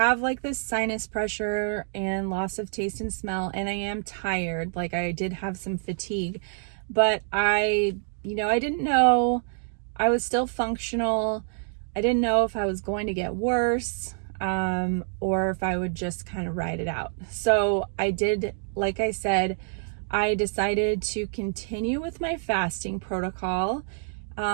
this sinus pressure and loss of taste and smell, and I am tired. I did have some fatigue, but I didn't know. I was still functional. I didn't know if I was going to get worse, or if I would just kind of ride it out. So I did, like I said, I decided to continue with my fasting protocol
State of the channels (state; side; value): silent; left; digital silence